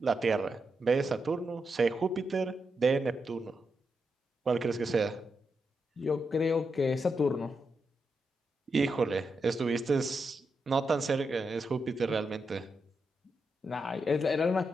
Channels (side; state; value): both; normal; correlation 0.85